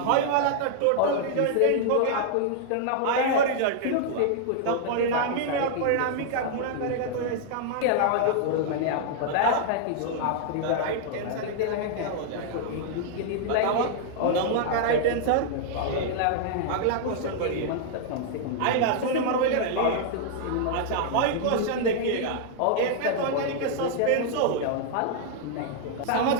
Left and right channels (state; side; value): different; both; correlation -0.01